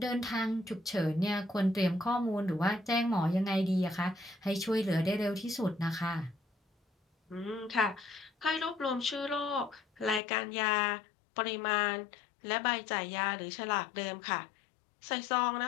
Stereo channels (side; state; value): right; drops out; at 10.2 s